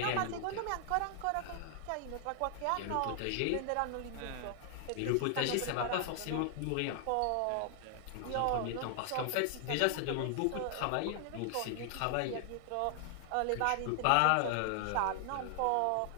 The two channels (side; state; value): both; different; correlation 0.00